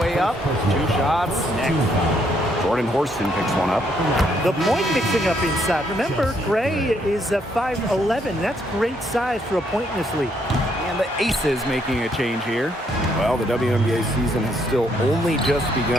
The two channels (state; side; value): normal; both; correlation 0.72